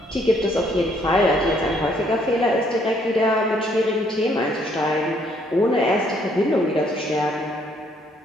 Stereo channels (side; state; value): both; normal; correlation 0.67